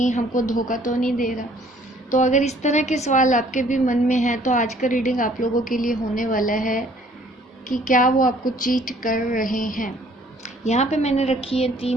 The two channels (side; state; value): both; normal; correlation 0.58